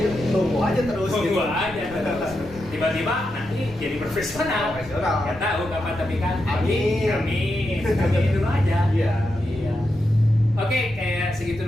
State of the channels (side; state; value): left; noise; rumble, 18 dB below the sound